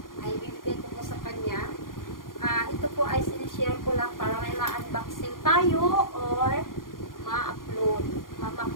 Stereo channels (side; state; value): right; late; 0.90 ms